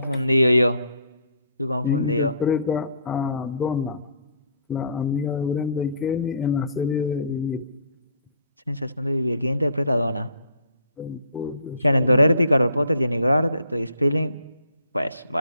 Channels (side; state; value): both; inverted; correlation -0.59